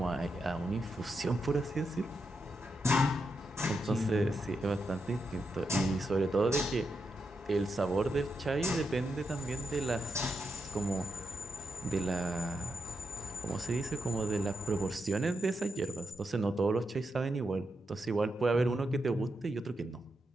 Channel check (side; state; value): both; normal; correlation 0.84